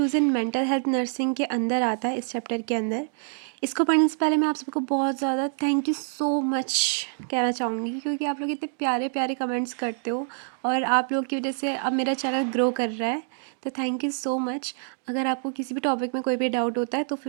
in mental health nursing के अंदर आता है, इस चैप्टर के अंदर। इसको पढ़ने से पहले मैं आप सबको बहुत ज़्यादा थैंक यू सो मच कहना चाहूँगी, क्योंकि आप लोग इतने प्यारे प्यारे कमेंट्स करते हो और आप लोग की वजह से अब मेरा चैनल ग्रो कर रहा है। तो थैंक यू सो मच। अगर आपको किसी भी टॉपिक में कोई भी डाउट होता है तो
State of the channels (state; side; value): silent; left; digital silence